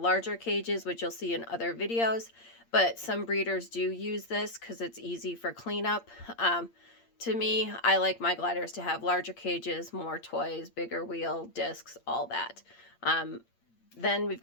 cages, which you'll see in other videos, but some breeders do use this because it's easy for cleanup. To me, I like my gliders to have larger cages, more toys, bigger wheel, discs, all that. Then we've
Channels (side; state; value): right; late; 8.7 ms